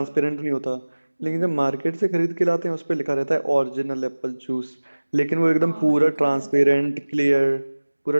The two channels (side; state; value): both; inverted; correlation -1.00